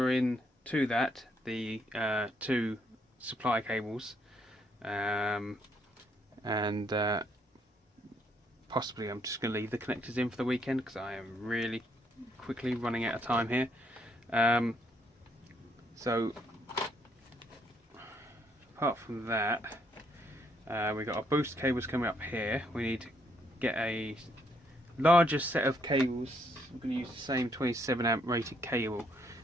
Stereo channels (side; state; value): both; normal; correlation 0.72